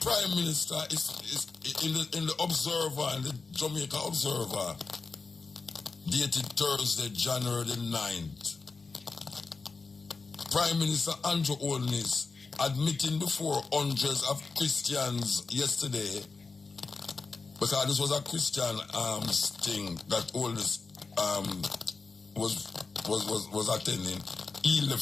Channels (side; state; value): right; quieter; 4.3 dB